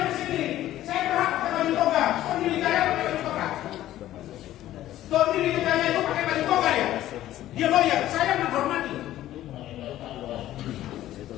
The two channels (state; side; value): quieter; right; 13.7 dB